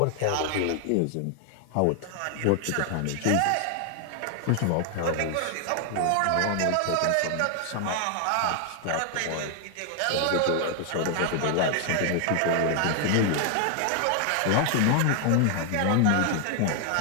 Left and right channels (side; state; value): both; different; correlation 0.00